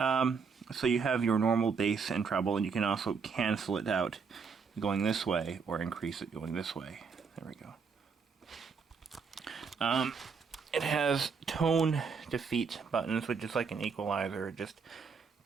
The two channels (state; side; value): quieter; left; 5.5 dB